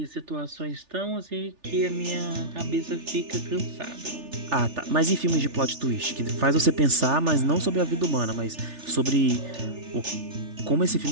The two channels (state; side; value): late; left; 3.4 ms